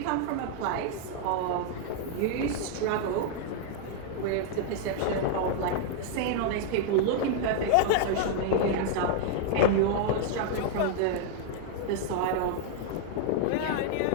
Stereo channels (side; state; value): both; different; correlation 0.00